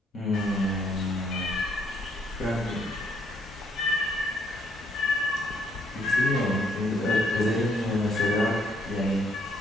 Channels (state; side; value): normal; both; correlation 0.69